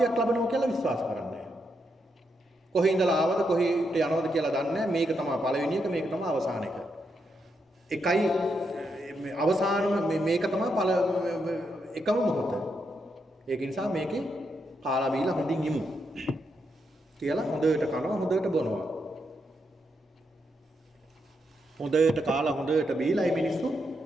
ලැබෙනවා කියලා විශ්වාස කරන්නේ නැහැ. කොහේ ඉඳලා ආවද කොහෙට යනවද කියලා දන්නේ නැහැ. මේක තමයි පළවෙනි එක, මේක තමයි අවසාන එක. එකයි අවසානම මේක තමයි එකම මොහොත. ඒක නිසා මේකේ කාලා බීලා හොඳින් ඉමු. කියලා හොඳට කනවා හොඳට බොනවා. හොඳට කාලා හොඳට බීලා මේ මිනිස්සු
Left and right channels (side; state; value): both; normal; correlation 0.81